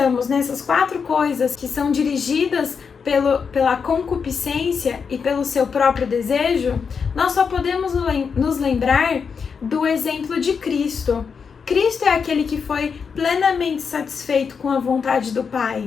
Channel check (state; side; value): quieter; right; 6.0 dB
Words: nessas 4 coisas que são dirigidas pela concupiscência e pelo seu próprio desejo, nós só podemos nos lembrar do exemplo de Cristo. Cristo é aquele que foi plenamente satisfeito com a vontade do